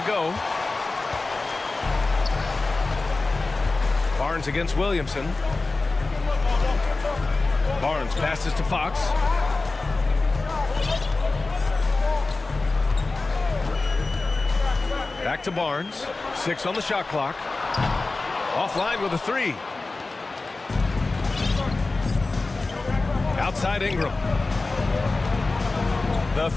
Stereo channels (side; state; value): right; quieter; 3.5 dB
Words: go. Barnes against Williamson. Barnes passes to Fox. Back to Barnes. 6 on the shot clock. Offline with a 3. Outside Ingram. The